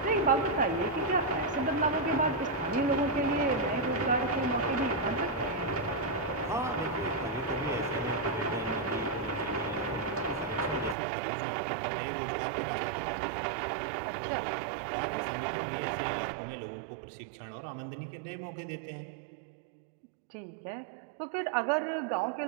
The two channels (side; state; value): left; drops out; at 11.0 s